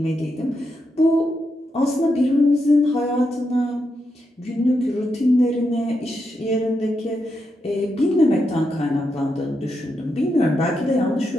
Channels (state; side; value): normal; both; correlation 0.84